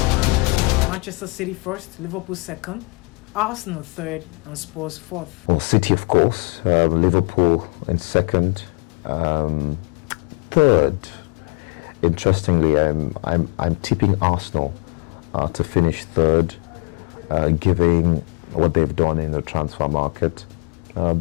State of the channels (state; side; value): quieter; right; 31.4 dB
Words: Manchester City first, Liverpool second, Arsenal third, and Spurs fourth. Well, City, of course, Liverpool in second, third. Interestingly, I'm tipping Arsenal to finish third, given what they've done in the transfer market.